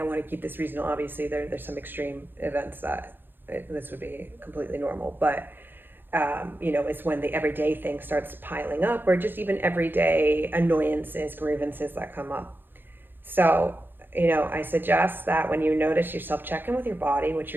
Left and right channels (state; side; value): late; left; 0.097 ms